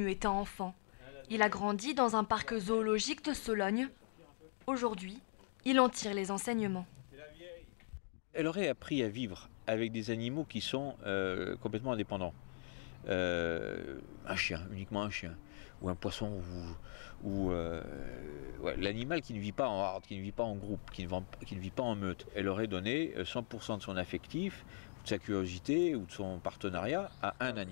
étant enfant. Il a grandi dans un parc zoologique de Sologne. Aujourd'hui, il en tire les enseignements. Elle aurait appris à vivre avec des animaux qui sont complètement indépendants. Un chien, uniquement un chien, ou un poisson, ou l'animal qui ne vit pas en horde, qui ne vit pas en groupe, qui ne vit pas en meute. Elle aurait donné 100% de son affectif, de sa curiosité ou de son partenariat à un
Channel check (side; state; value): right; silent; digital silence